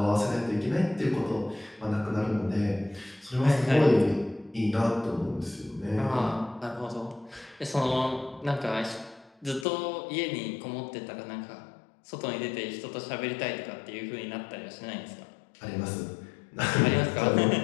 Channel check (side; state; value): right; drops out; at 9.7 s